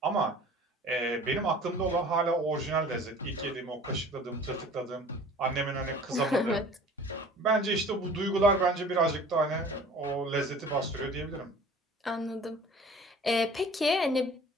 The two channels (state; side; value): normal; both; correlation 0.46